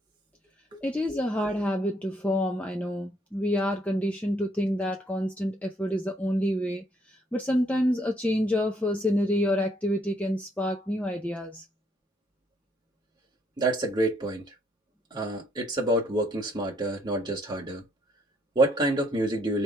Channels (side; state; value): both; normal; correlation 0.69